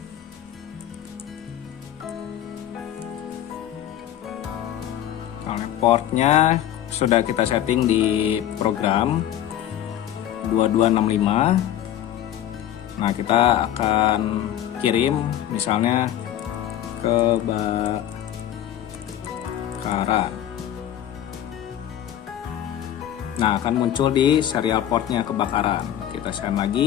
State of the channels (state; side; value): quieter; right; 11.5 dB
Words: Portnya sudah kita setting di program 2265. Nah, kita akan kirim misalnya kebakaran. Nah, akan muncul di serial portnya kebakaran. Kita send